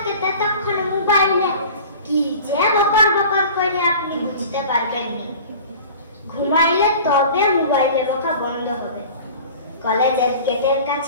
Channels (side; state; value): both; inverted; correlation -0.40